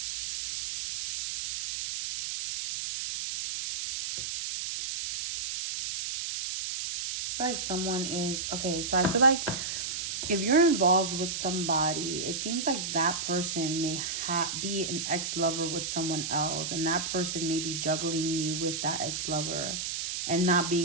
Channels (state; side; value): noise; right; hiss, 3 dB below the sound